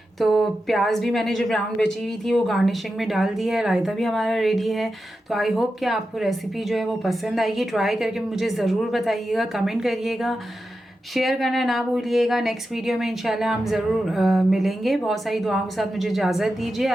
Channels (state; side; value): normal; both; correlation 0.90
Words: तो प्याज भी मैंने जो ब्राउन बची हुई थी वो गार्निशिंग में डाल दी है। रायता भी हमारा रेडी है। तो आई होप कि आपको रेसिपी जो है वो पसंद आएगी। ट्राई करके मुझे ज़रूर बताइएगा, कमेंट करिएगा, शेयर करना ना भूलिएगा। नेक्स्ट वीडियो में इंशाल्लाह हम ज़रूर मिलेंगे। बहुत सारी दुआओं के साथ मुझे इजाज़त दीजिए।